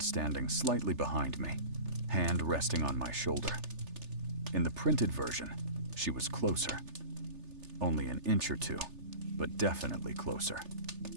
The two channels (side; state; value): left; late; 3.3 ms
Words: standing slightly behind me, hand resting on my shoulder. In the printed version, she was closer. Only an inch or two, but definitely closer.